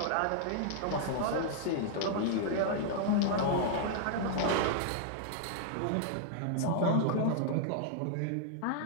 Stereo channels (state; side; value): different; both; correlation 0.00